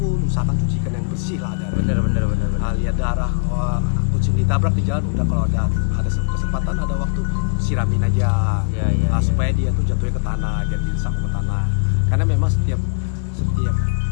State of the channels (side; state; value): right; silent; digital silence